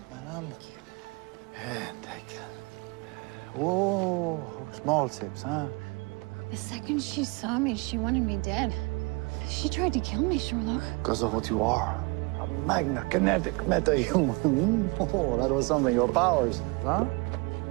madame. And take it. Whoa, small sips, huh? The second she saw me, she wanted me dead. She tried to kill me, Sherloque. Because of what you are. A magna kinetic meta-human. Oh, that was something. Your powers, huh?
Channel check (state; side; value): quieter; left; 28.9 dB